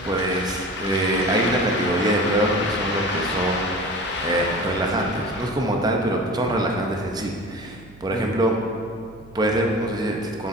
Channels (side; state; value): right; noise; hum, 23 dB below the sound